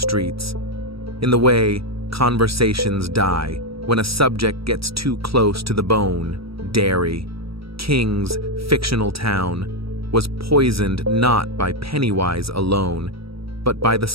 in the way conversations die when a subject gets too close to the bone. Derry, King's fictional town, was poisoned not by Pennywise alone, but by the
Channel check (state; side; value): late; left; 0.76 ms